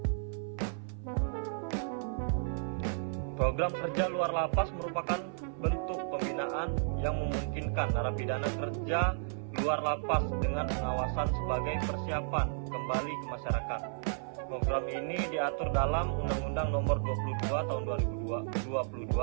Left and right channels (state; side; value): silent; left; 56 dB below the other